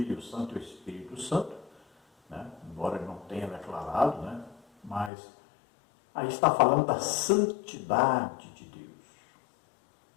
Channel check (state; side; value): drops out; right; at 5.1 s